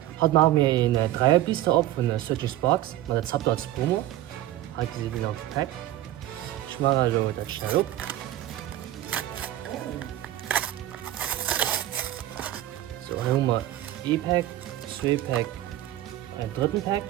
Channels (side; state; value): left; quieter; 13.8 dB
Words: Heute machen wir einen Dreierbiester ab von Searching Sparks mit der Zapter als Promo. Heute sind wir noch gepackt. Ich mache also das schnell ab. So, dann haben wir E-Pack, 2-Pack, einen dritten Pack.